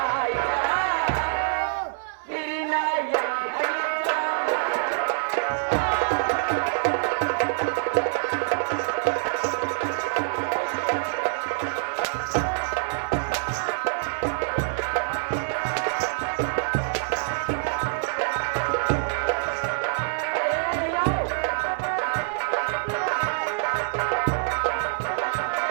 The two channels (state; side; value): silent; left; 60 dB below the other